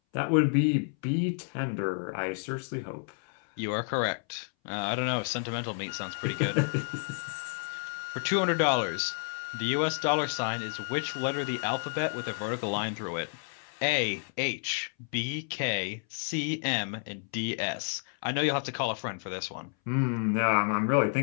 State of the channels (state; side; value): silent; right; 58 dB below the other